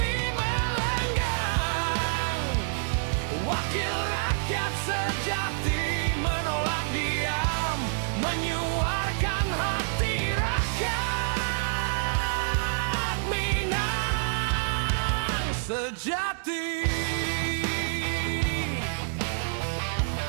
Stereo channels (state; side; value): silent; left; 60 dB below the other